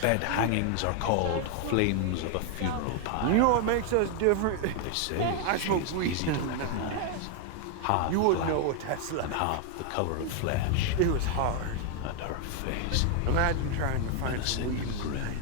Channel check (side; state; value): both; different; correlation 0.00